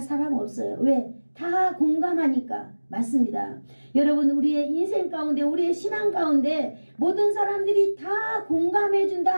없어요. 왜? 다 공감하니까. 맞습니다. 여러분, 우리의 인생 가운데, 우리의 신앙 가운데 모든 사람들이 다 공감해 준다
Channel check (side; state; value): both; inverted; correlation -1.00